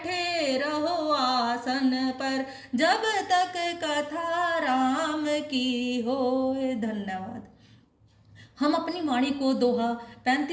रहो आसन पर, जब तक कथा राम की होय। धन्यवाद। हम अपनी वाणी को दोहा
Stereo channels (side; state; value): both; identical; correlation 1.00